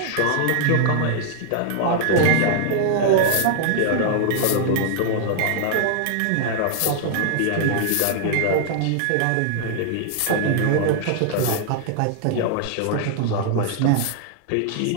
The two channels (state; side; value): different; both; correlation -0.01